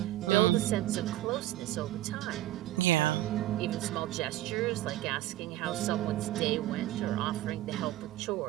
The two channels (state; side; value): quieter; left; 15.5 dB